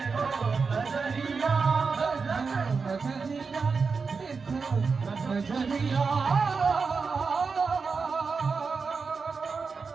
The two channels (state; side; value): quieter; left; 4.9 dB